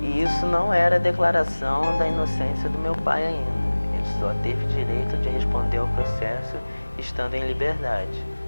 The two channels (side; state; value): both; inverted; correlation -1.00